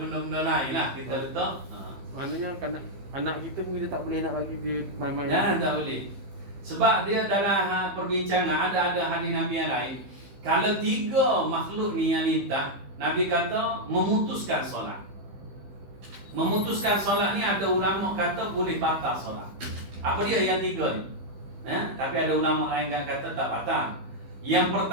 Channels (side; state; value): left; late; 15 ms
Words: lain lah kita letak. Maknanya anak kita pun kita tak boleh nak lagi dia main-main. Jangan, tak boleh. Sebab dia dalam perbincangan ada hadis Nabi yang lain. Kalau 3 makhluk ni yang lintas, Nabi kata memutuskan solat. Memutuskan solat ni ada ulama kata boleh batal solat. Apa dia yang 3 ni? Tapi ada ulama lain yang kata tak batal. Yang